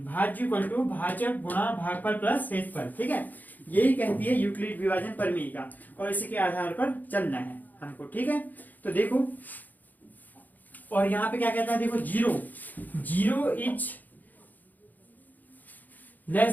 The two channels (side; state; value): right; late; 0.083 ms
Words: भाज्य इक्वल टू भाजक गुणा भागफल प्लस शेषफल, ठीक है। यही कहती है यूक्लिड विभाजन प्रमेय का, और इसी के आधार पर चलना है हमको, ठीक है। तो देखो, और यहाँ पे क्या कहता है, देखो zero is less